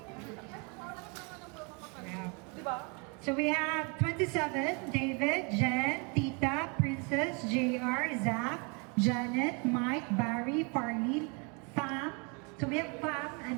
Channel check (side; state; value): left; quieter; 33.0 dB